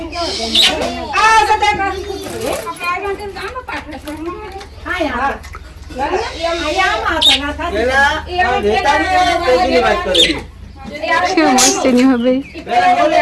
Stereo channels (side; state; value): both; identical; correlation 1.00